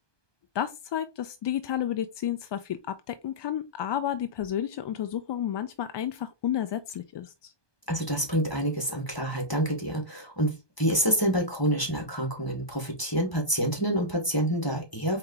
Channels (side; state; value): right; late; 1.2 ms